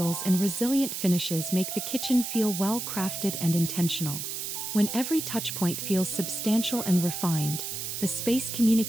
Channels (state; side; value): noise; right; hiss, 5 dB below the sound